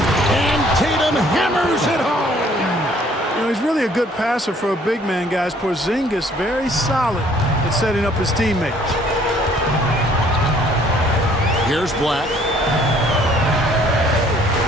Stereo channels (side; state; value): both; normal; correlation 0.60